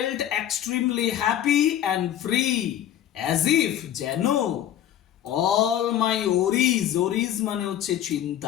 extremely happy and free, as if যেন, অল মাই ওরিজ, ওরিজ মানে হচ্ছে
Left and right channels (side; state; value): right; quieter; 11.1 dB